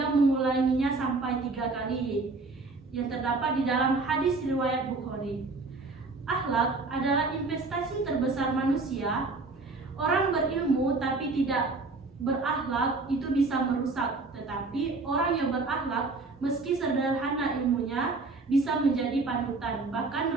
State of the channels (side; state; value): left; quieter; 3.7 dB